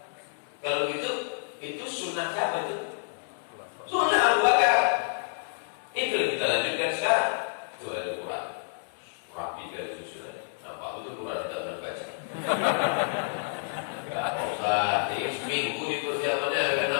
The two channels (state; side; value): silent; right; 59 dB below the other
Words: Kalau gitu, itu sunnah siapa itu? Sunnah Abu Bakar. Itu yang kita lanjutkan sekarang. Itu ada Quran. Rapi dari susunannya. Nampak itu Quran tidak berbaca. Gak usah, ini seminggu di persiapannya akan